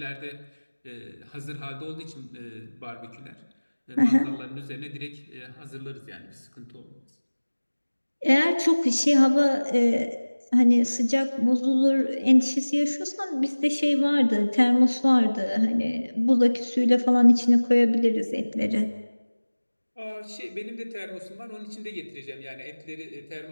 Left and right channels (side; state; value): both; inverted; correlation -1.00